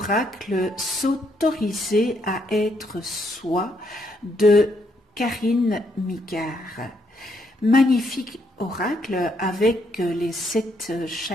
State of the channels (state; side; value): normal; both; correlation 0.74